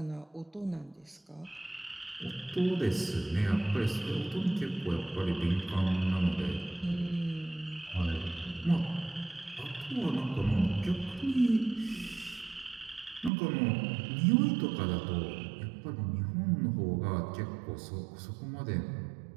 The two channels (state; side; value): drops out; left; at 13.3 s